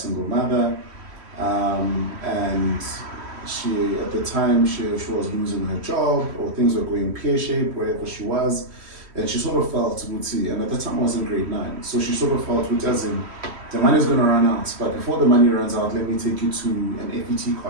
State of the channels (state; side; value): late; left; 3.1 ms